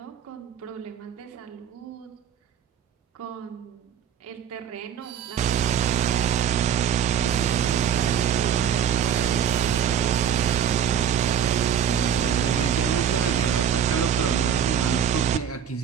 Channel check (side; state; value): left; quieter; 8.3 dB